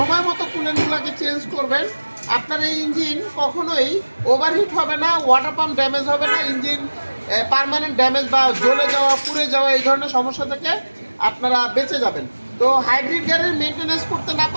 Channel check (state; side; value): inverted; both; correlation -1.00